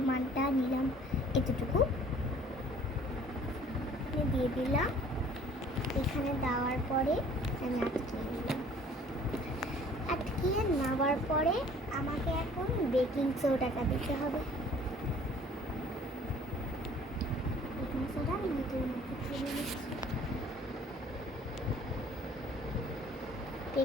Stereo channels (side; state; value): both; normal; correlation 0.53